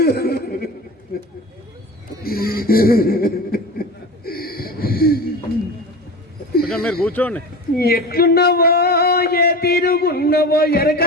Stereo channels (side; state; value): both; normal; correlation 0.31